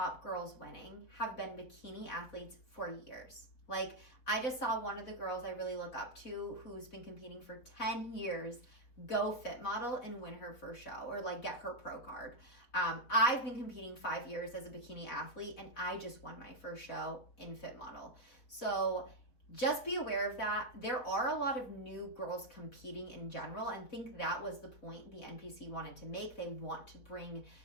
girls winning have been bikini athletes for years. Like, I just saw one of the girls I really look up to, who's been competing for 10 years, go Fit Model and win her first show, or like get her pro card. I've been competing 5 years as a bikini athlete, and I just won my first show in Fit Model. So just be aware of that. There are a lot of new girls competing in general, and I think that was the point the NPC wanted to make. They want to bring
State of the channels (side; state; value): right; late; 4.2 ms